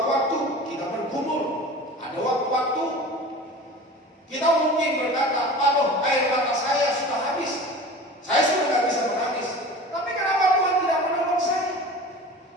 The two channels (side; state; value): both; normal; correlation 0.37